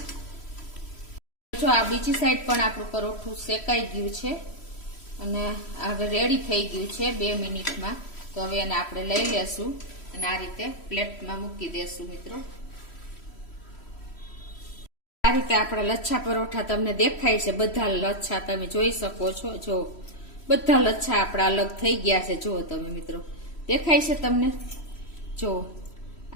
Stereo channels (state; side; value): late; right; 3.1 ms